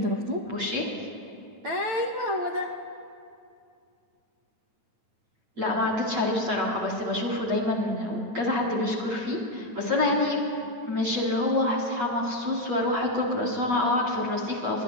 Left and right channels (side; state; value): left; late; 9.1 ms